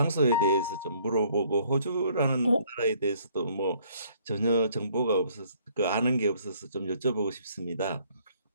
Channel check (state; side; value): inverted; both; correlation -0.62